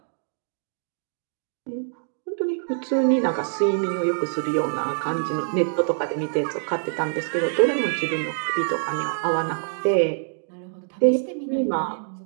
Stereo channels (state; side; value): silent; left; digital silence